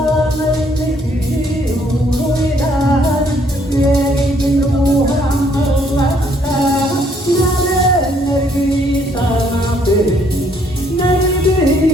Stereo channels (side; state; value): both; normal; correlation 0.66